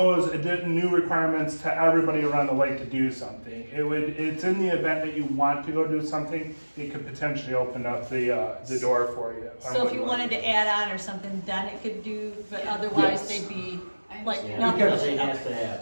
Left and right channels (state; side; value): inverted; both; correlation -1.00